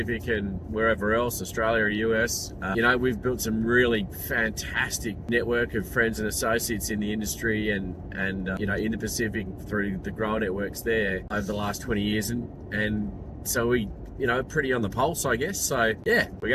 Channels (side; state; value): both; identical; correlation 1.00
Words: and wherever else, Australia or US. You know, we've built some really fantastic network of friends and associates in the industry and you know, in the Pacific through the grower networks there over the last 20 years, and so we, you know, pretty on the pulse, I guess. So yeah, we're